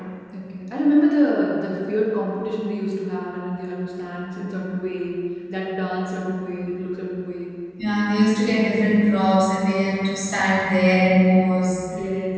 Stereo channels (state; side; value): identical; both; correlation 1.00